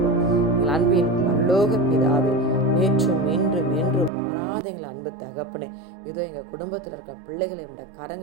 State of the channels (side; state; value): left; drops out; at 4.1 s